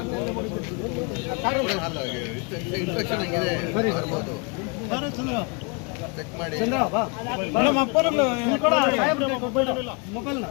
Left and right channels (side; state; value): right; quieter; 32.4 dB